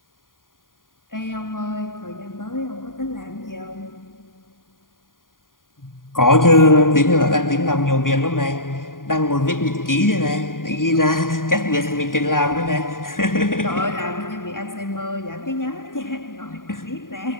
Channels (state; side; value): late; right; 0.90 ms